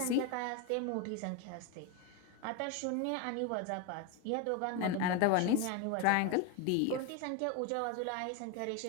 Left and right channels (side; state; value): both; different; correlation 0.02